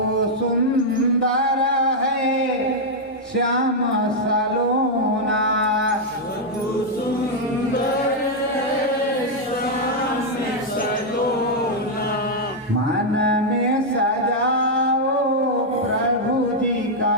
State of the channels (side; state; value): both; normal; correlation -0.02